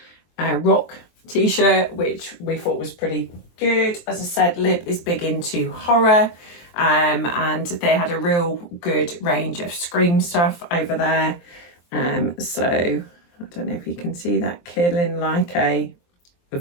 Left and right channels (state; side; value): late; right; 23 ms